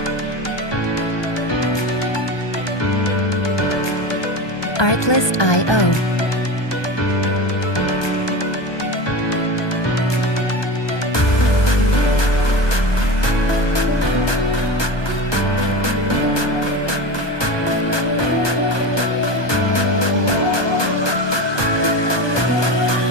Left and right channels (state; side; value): late; right; 1.2 ms